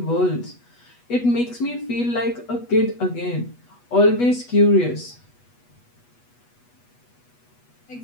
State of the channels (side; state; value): right; late; 8.2 ms